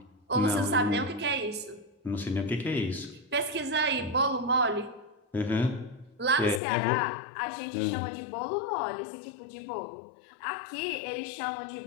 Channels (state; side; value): drops out; right; at 6.6 s